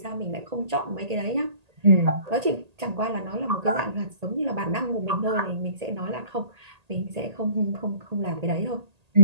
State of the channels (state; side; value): late; left; 1.8 ms